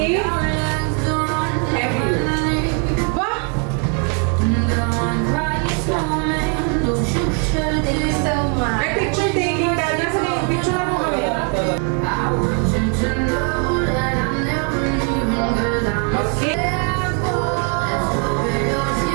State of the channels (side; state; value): left; quieter; 39.6 dB